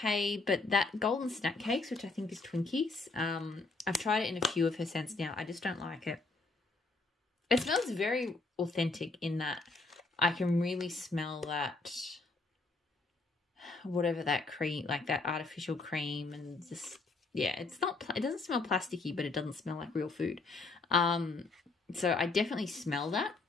but that golden snack cakes, which I think is Twinkies, I've tried it in a few of her scents now. I just don't like it. It smells very authentic in that I can really smell that, whatever that cream, like that artificial cream, and just, yeah, it doesn't smell plasticky, but it doesn't smell like real food. So I definitely smell that,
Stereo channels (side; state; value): right; quieter; 3.6 dB